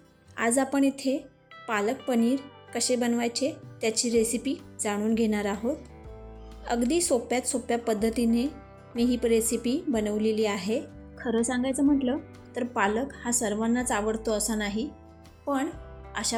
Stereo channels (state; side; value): identical; both; correlation 1.00